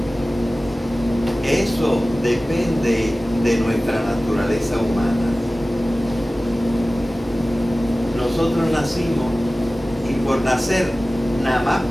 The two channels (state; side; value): normal; both; correlation 0.97